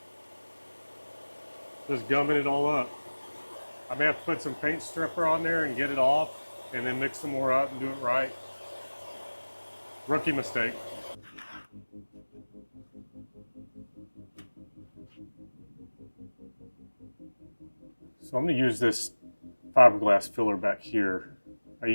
Just gumming it all up. I may have to put some paint stripper on there and get it off, and then mix some more up and do it right. Rookie mistake. So I'm going to use this fiberglass filler back here. I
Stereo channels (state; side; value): inverted; both; correlation -1.00